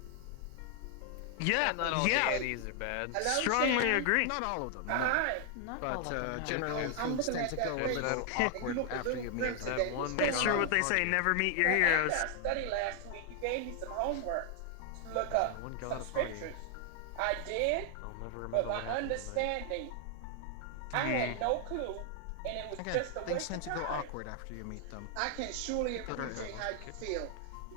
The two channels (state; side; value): different; both; correlation 0.00